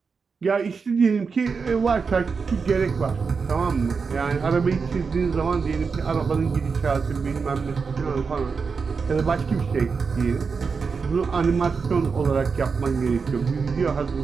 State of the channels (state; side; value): quieter; left; 5.2 dB